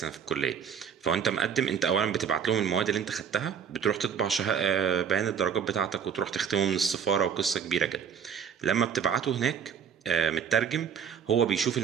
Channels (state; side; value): quieter; left; 7.5 dB